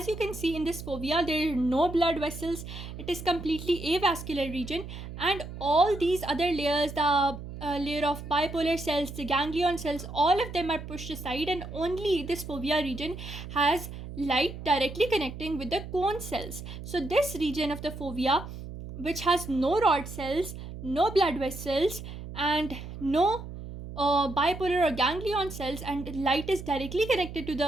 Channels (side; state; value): right; noise; hum, 10 dB below the sound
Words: you can see in this fovea, there are no blood vessels. It is completely avascular region, and all these other layers, the layer of bipolar cells, the ganglion cells, all of them are pushed aside, and only this fovea region has light directly connecting with the cone cells. So this region of the fovea, which has no rod cells, no blood vessels, and no bipolar or ganglion cells, and light is directly connected to